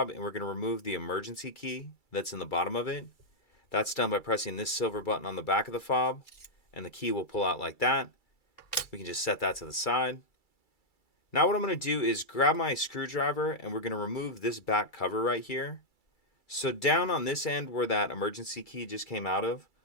and we're going to remove the emergency key that's in the bottom of it. That's done by pressing this silver button on the back of the fob, and the key will pull out like that. We can just set that to the side. Now what I'm going to do is grab my screwdriver and we're going to remove this back cover right here. So down on this end where that emergency key just came out of,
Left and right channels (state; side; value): late; right; 2.3 ms